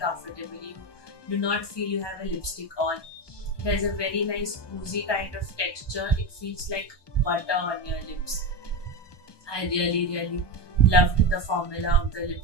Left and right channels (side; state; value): right; late; 1.2 ms